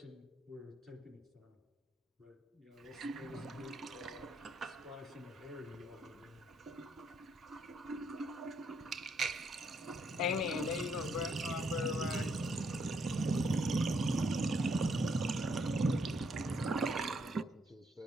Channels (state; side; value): normal; both; correlation 0.73